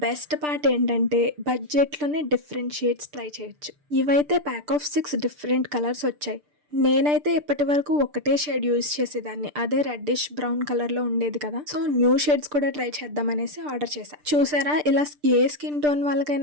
బెస్ట్ పార్ట్ ఏంటంటే బడ్జెట్లోనే డిఫరెంట్ షేడ్స్ ట్రై చేయొచ్చు. ఇవైతే ప్యాక్ ఆఫ్ 6 డిఫరెంట్ కలర్స్ వచ్చాయి. నేనైతే ఇప్పటి వరకు ఒకటే షేడ్ యూజ్ చేసేదాన్ని, అదే రెడ్డిష్ బ్రౌన్ కలర్ లో ఉండేది కదా. సో న్యూ షేడ్స్ కూడా ట్రై చేద్దాం అనేసి ఆర్డర్ చేశా. చూసారా, ఇలా ఏ స్కిన్ టోన్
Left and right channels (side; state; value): left; late; 6.8 ms